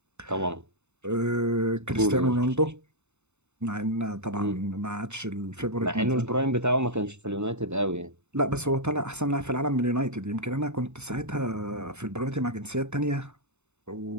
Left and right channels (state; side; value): late; left; 0.82 ms